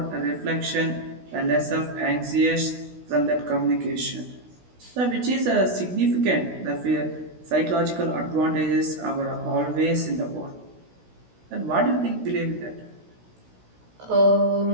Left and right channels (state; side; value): late; left; 16 ms